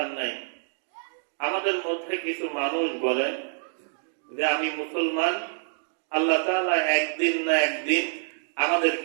নাই। আমাদের মধ্যে কিছু মানুষ বলে যে আমি মুসলমান, আল্লাহ তাআলা একদিন না একদিন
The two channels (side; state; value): left; silent; digital silence